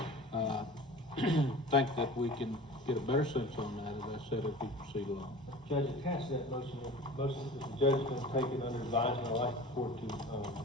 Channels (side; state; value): both; normal; correlation 0.39